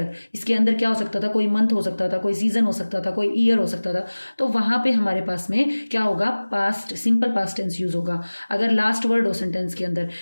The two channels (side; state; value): both; inverted; correlation -1.00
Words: इसके अंदर क्या हो सकता था, कोई मंथ हो सकता था, कोई सीजन हो सकता था, कोई ईयर हो सकता था। तो वहां पे हमारे पास में क्या होगा, past, simple past tense use होगा। अगर लास्ट वर्ड हो सेंटेंस के अंदर,